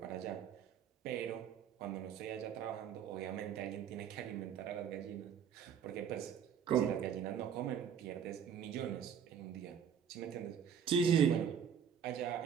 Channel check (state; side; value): quieter; left; 8.0 dB